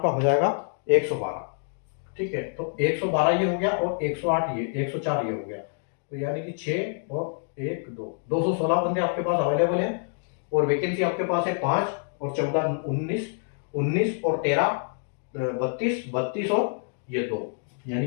हो जाएगा 112, ठीक है। तो 112 ये हो गया, और 108 ये 104 ये हो गया, तो यानी कि 6 और 1 2 216 बंदे आपके पास अवेलेबल है। और वैकेंसी आपके पास है 5 और 14 19 और 13 32 और ये 2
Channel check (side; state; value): right; silent; 59 dB below the other